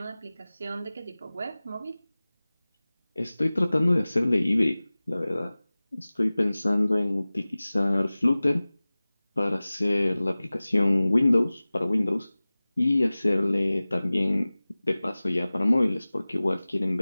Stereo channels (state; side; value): inverted; both; correlation -0.99